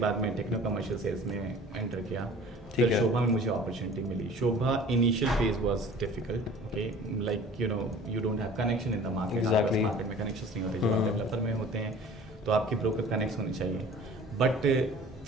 बाद मैं टेक्नो कमर्शियल सेल्स में एंटर किया. फिर शोभा में मुझे अपॉर्चुनिटी मिली. Sobha initial phase was difficult, okay, like you know you don't have connection in the market. Market में कनेक्शंस नहीं होते. जो आप डेवलपर में होते हैं तो आपके ब्रोकर कनेक्ट होने चाहिए. But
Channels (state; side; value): normal; both; correlation 0.46